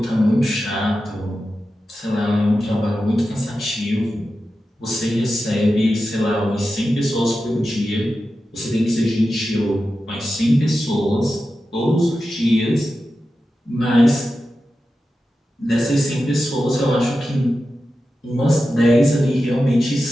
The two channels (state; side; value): normal; both; correlation 0.92